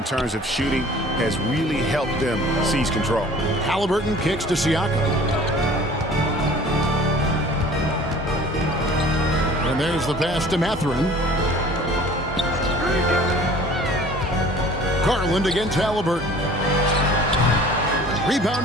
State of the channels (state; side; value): normal; both; correlation 0.48